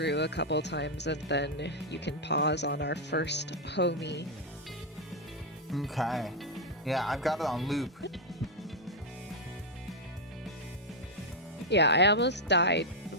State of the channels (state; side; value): normal; both; correlation 0.00